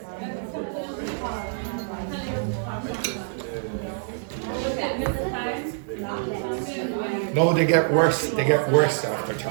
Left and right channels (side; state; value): left; silent; digital silence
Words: No, they get worse. They get worse after